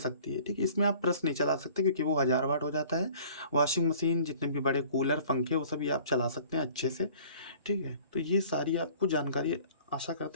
है, ठीक है? इसमें आप प्रेस नहीं चला सकते क्योंकि वो 1000 वाट हो जाता है। वॉशिंग मशीन, जितने भी बड़े कूलर, पंखे, वो सभी आप चला सकते हैं अच्छे से, ठीक है? तो ये सारी आपको जानकारी आशा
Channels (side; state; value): both; inverted; correlation -0.51